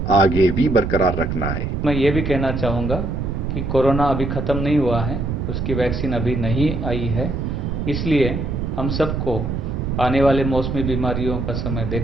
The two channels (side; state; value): right; noise; rumble, 2 dB below the sound